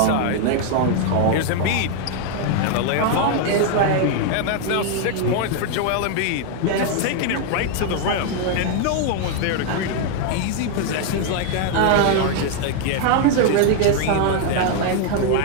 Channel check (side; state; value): both; different; correlation 0.00